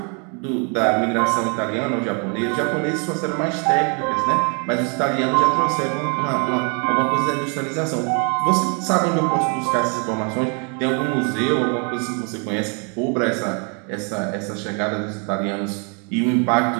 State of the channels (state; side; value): quieter; left; 36.9 dB